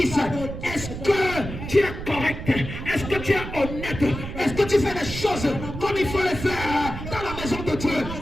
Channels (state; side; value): noise; right; rumble, 8 dB below the sound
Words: est-ce que tu es correct? Est-ce que tu es honnête? Est-ce que tu fais les choses comme il faut les faire dans la maison de Dieu?